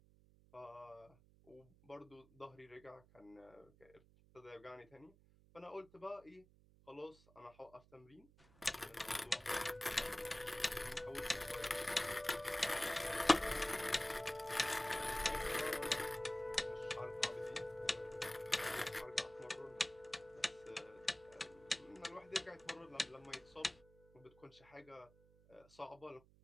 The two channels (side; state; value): right; noise; hum, 26 dB below the sound